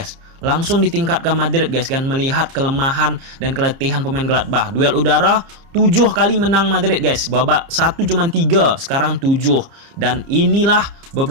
Langsung ditingkatkan Madrid guys kan, melihat kelemahan dan keletihan pemain Gladbach. Duel udara 7 kali menang Madrid guys. Babak 1 cuma 3, sekarang 7. Dan inilah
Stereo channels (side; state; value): left; late; 30 ms